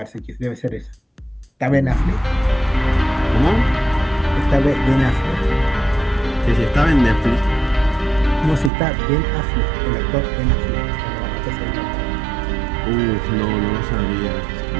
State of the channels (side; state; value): left; drops out; at 8.7 s